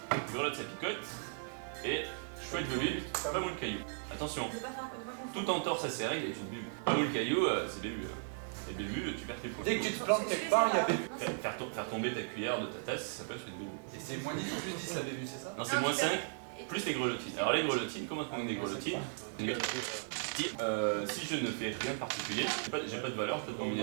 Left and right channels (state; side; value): silent; left; 53 dB below the other